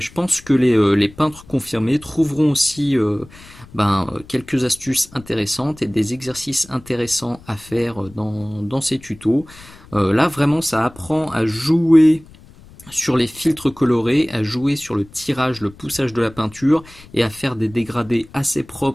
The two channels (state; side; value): noise; left; rumble, 22 dB below the sound